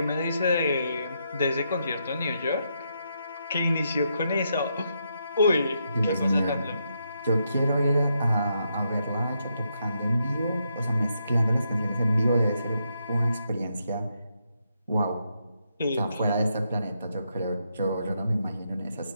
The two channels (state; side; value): inverted; both; correlation -0.80